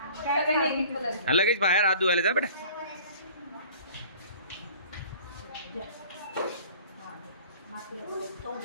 सगळ्यांनी एक एक कलर. हा लगेच बाहेर हात धुवायला जा बेटा.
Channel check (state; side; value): inverted; both; correlation -0.48